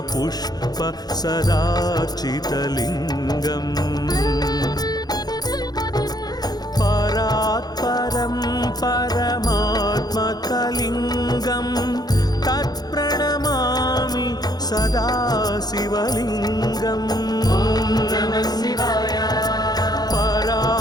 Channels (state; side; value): late; right; 0.19 ms